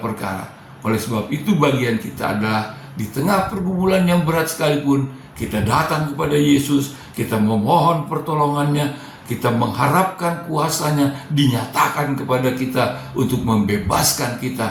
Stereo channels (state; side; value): identical; both; correlation 1.00